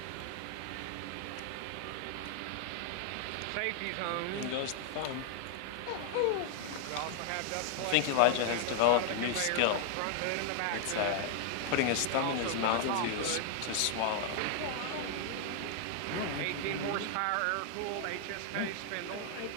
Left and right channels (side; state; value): both; different; correlation 0.00